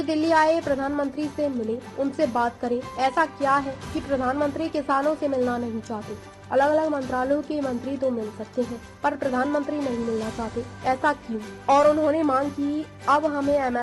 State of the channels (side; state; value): both; identical; correlation 1.00